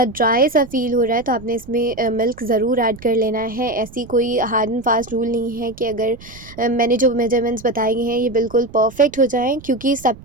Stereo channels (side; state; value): right; noise; rumble, 19 dB below the sound